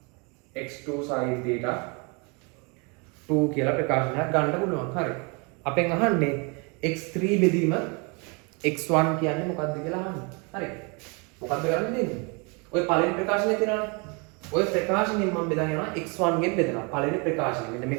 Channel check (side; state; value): left; quieter; 31.9 dB